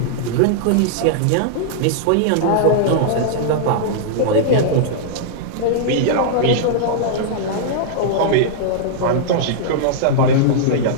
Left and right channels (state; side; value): different; both; correlation -0.02